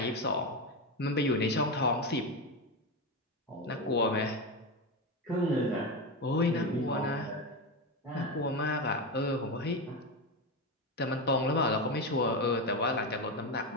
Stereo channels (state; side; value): normal; both; correlation 0.15